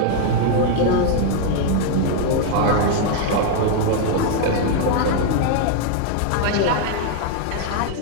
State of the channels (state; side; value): different; both; correlation 0.00